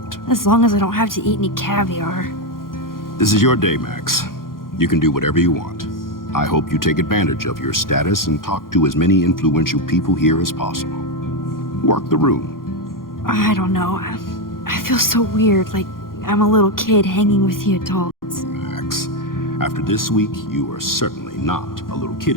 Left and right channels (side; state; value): right; late; 0.91 ms